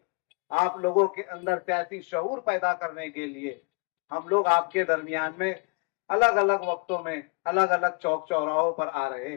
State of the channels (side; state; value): right; quieter; 33.8 dB